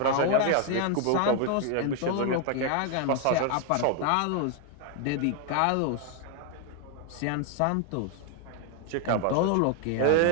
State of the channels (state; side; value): different; both; correlation 0.00